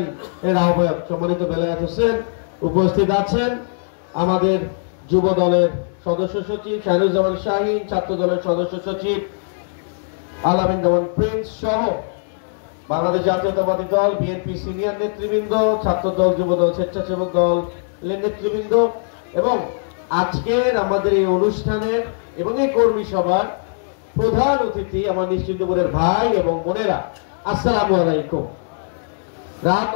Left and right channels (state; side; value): silent; right; digital silence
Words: আহ্বায়ক সম্মানিত বেলায়েত হোসেন। উপস্থিত আছেন আমাদের যুব দলের সদস্য সচিব শাহরুজ্জামান শাহীন, ছাত্র দলের সদস্য সচিব আলামিন জামান প্রিন্স সহ বাংলাদেশ জাতীয়তাবাদী দল বিএনপি সিনিয়র নেতৃবৃন্দ, ছাত্র দল, যুব দল, স্বেচ্ছাসেবক দল নেতৃবৃন্দ এবং আজকের আমাদের এই অনুষ্ঠানের এবং এই কর্মী সভার প্রধান অতিথি আমার নিশ্চিন্তপুরের ভাই এবং বোনেরা, আসসালামু আলাইকুম। রাত